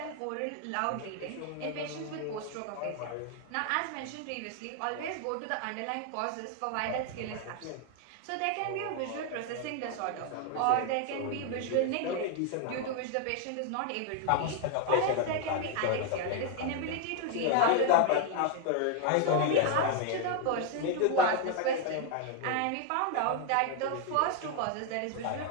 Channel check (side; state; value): both; different; correlation 0.00